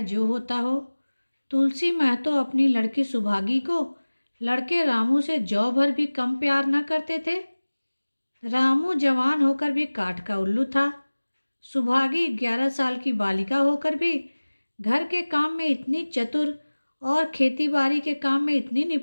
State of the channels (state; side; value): inverted; both; correlation -1.00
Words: जो होता हो, तुलसी महतो अपनी लड़की सुभागी को लड़के रामू से जौ भर भी कम प्यार न करते थे। रामू जवान होकर भी काठ का उल्लू था। सुभागी 11 साल की बालिका होकर भी घर के काम में इतनी चतुर और खेतीबाड़ी के काम में इतनी